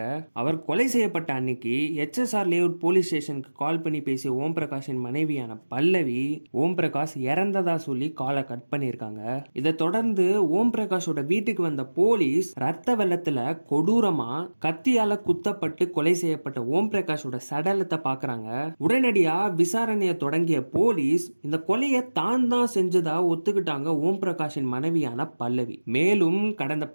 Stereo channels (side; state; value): both; inverted; correlation -1.00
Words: அவர் கொலை செய்யப்பட்ட அன்னைக்கு HSR லேஅவுட் போலீஸ் ஸ்டேஷனுக்கு கால் பண்ணி பேசிய ஓம் பிரகாஷின் மனைவியான பல்லவி ஓம் பிரகாஷ் இறந்ததா சொல்லி காலை கட் பண்ணியிருக்காங்க. இதை தொடர்ந்து ஓம் பிரகாஷோட வீட்டுக்கு வந்த போலீஸ் ரத்த வெள்ளத்துல கொடூரமா கத்தியால குத்தப்பட்டு கொலை செய்யப்பட்ட ஓம் பிரகாஷோட சடலத்தை பாக்குறாங்க. உடனடியா விசாரணையை தொடங்கிய போலீஸ் இந்த கொலையை தான் செஞ்சதா ஒத்துக்கிட்டாங்க ஓம் பிரகாஷின் மனைவியான பல்லவி. மேலும் கடந்த